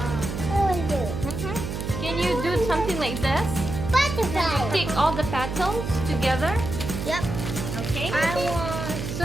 want to do Can you do something like this? butterfly. Stick all the petals together. Yep. Okay. I want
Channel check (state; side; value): noise; right; hum, 5 dB below the sound